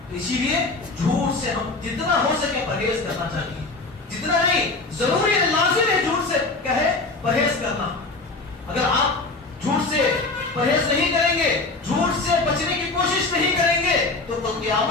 اسی لیے جھوٹ سے ہم جتنا ہو سکے پرہیز کرنا چاہیے، جتنا نہیں ضروری ہے لازم ہے جھوٹ سے کہے پرہیز کرنا. اگر آپ جھوٹ سے پرہیز نہیں کریں گے، جھوٹ سے بچنے کی کوشش نہیں کریں گے تو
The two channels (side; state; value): right; quieter; 3.4 dB